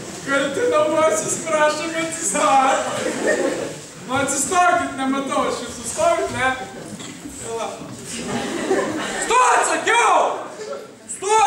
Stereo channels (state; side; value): identical; both; correlation 1.00